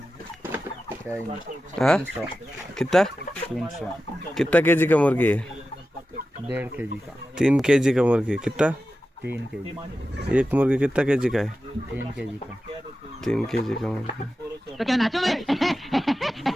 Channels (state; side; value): normal; both; correlation 0.93